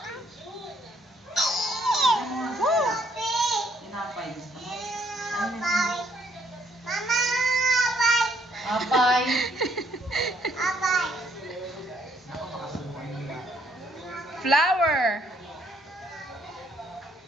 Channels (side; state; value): both; normal; correlation 0.68